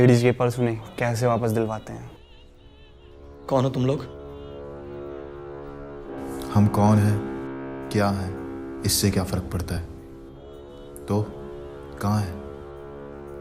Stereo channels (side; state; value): both; identical; correlation 1.00